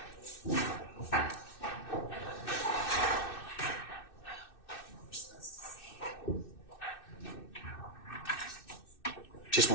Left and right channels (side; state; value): right; late; 2.6 ms